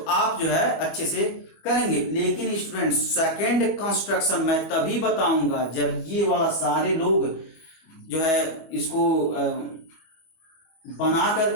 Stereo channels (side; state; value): right; late; 25 ms